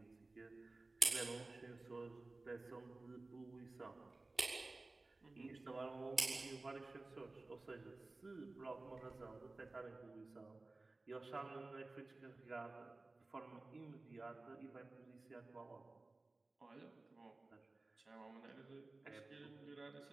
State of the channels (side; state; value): left; quieter; 3.2 dB